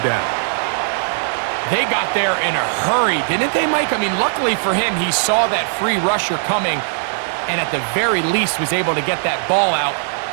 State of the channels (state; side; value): silent; left; digital silence